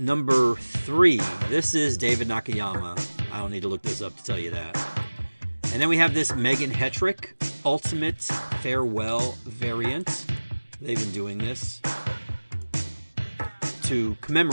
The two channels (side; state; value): both; inverted; correlation -1.00